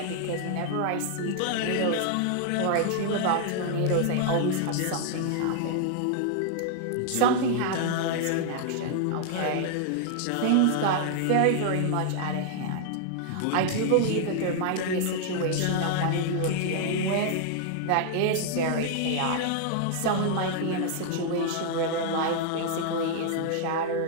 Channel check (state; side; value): different; both; correlation 0.00